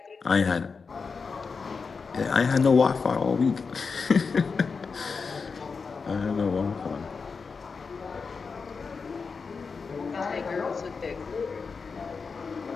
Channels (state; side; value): quieter; right; 5.0 dB